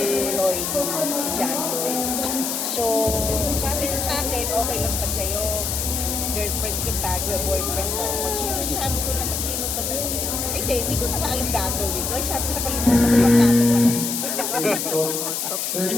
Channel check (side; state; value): left; noise; hiss, 2 dB below the sound